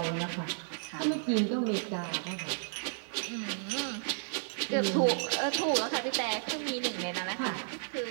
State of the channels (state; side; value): silent; left; digital silence